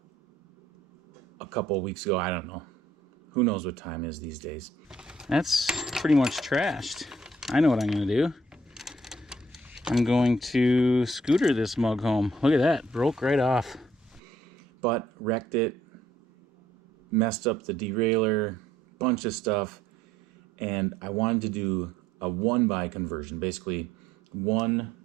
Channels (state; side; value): normal; both; correlation 0.65